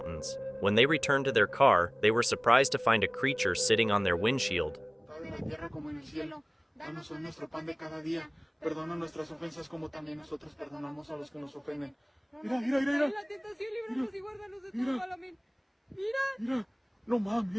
When they returned to their car, they were surprised to find a creature sitting on their windshield. Danos hoy nuestro pan de cada día. Perdona nuestras ofensas como también nosotros perdonamos a los que nos ofenden. Mira, mira, mira, mira. La tentación, líbranos y guárdanos de todo mal. Amén. Mira. Mira, no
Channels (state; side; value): identical; both; correlation 1.00